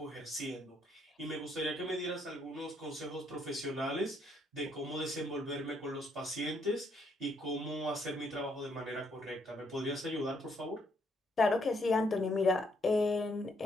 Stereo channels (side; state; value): both; normal; correlation 0.72